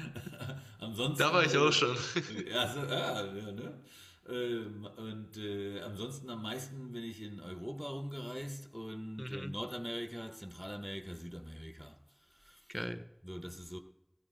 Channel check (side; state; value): both; identical; correlation 1.00